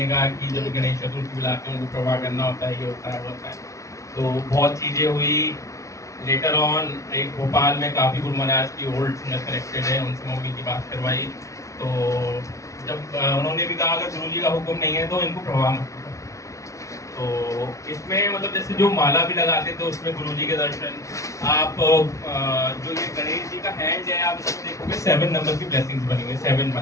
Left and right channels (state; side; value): late; right; 0.15 ms